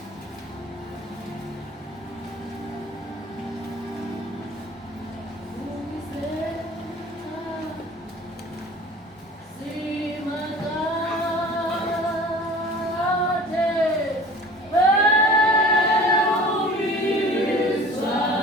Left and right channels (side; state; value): both; normal; correlation 0.43